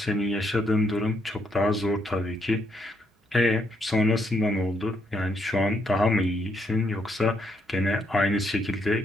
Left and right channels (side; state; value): both; normal; correlation 0.75